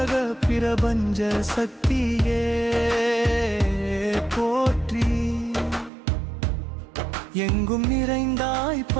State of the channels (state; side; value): drops out; left; at 5.9 s